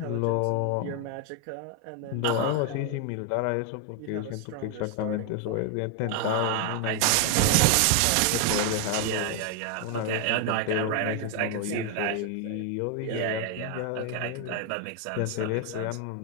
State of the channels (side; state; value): both; different; correlation 0.01